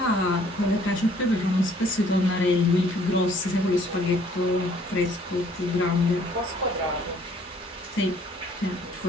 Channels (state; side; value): normal; both; correlation 0.59